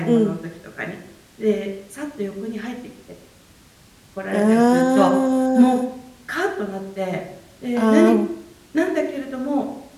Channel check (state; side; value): identical; both; correlation 1.00